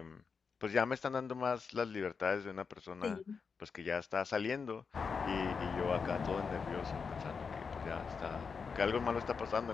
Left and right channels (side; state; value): right; quieter; 5.5 dB